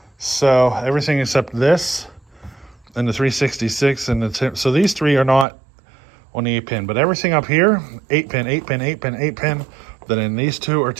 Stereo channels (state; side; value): drops out; left; at 5.5 s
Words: So everything except this and the 366 and the so these 3 are not on the 8-pin, but everything up here, 8-pin, 8-pin, 8-pin, 8-pin. Then in these 2 are